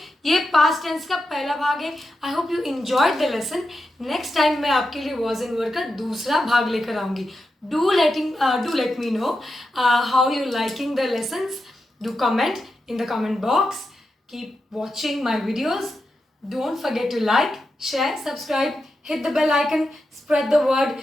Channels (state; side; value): normal; both; correlation 0.88